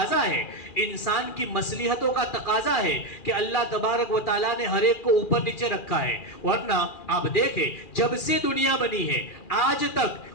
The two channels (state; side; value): late; right; 2.4 ms